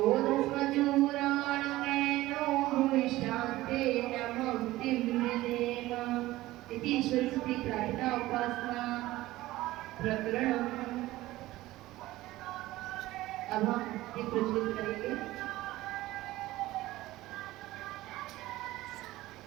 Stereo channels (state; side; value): quieter; left; 17.2 dB